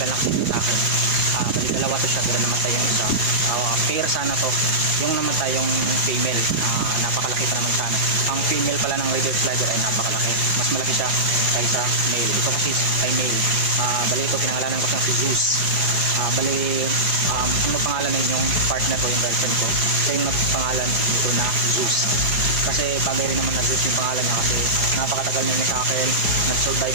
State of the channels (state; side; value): late; left; 4.9 ms